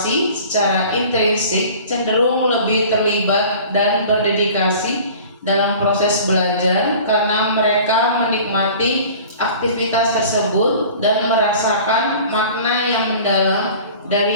secara intrinsik cenderung lebih terlibat dan berdedikasi dalam proses belajar karena mereka menikmati aktivitas tersebut dan merasakan makna yang mendalam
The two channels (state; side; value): inverted; both; correlation -0.44